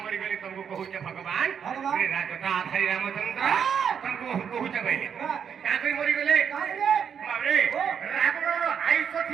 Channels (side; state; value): left; quieter; 7.6 dB